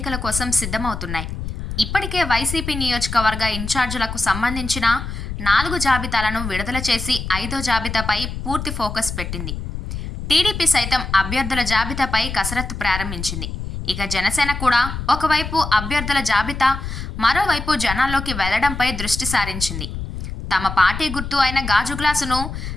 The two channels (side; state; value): left; noise; rumble, 6 dB below the sound